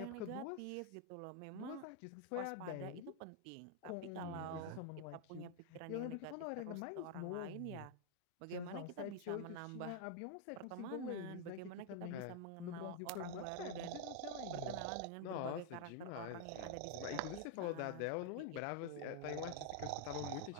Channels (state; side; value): different; both; correlation 0.00